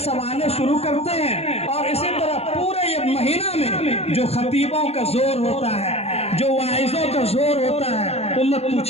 शुरू करते हैं और इसी तरह पूरे ये महीना में जो खतीबों का जोर होता है, जो वाइजों का जोर होता है, उम्मत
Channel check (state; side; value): late; right; 0.30 ms